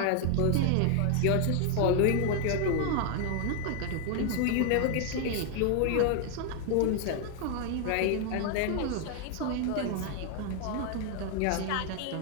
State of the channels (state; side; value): different; both; correlation 0.00